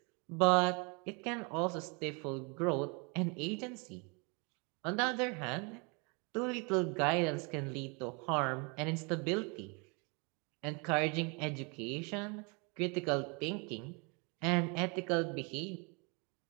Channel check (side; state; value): left; quieter; 31.9 dB